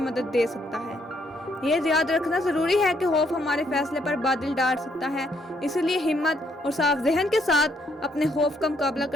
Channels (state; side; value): normal; both; correlation 0.71